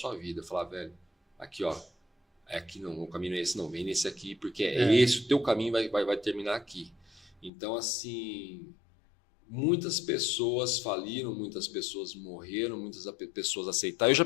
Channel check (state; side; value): drops out; right; at 7.5 s